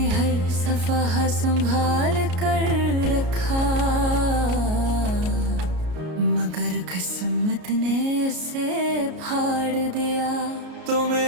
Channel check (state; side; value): late; left; 33 ms